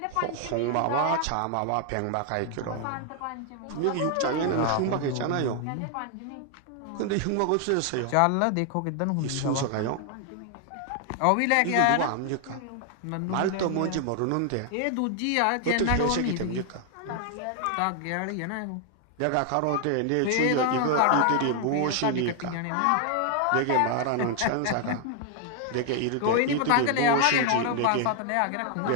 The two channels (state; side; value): different; both; correlation 0.00